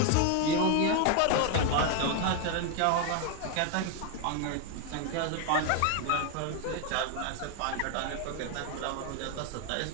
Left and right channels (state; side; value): different; both; correlation 0.01